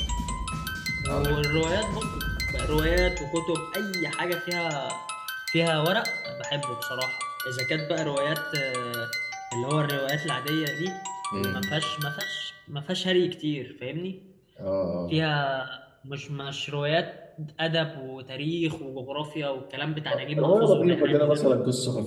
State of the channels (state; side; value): identical; both; correlation 1.00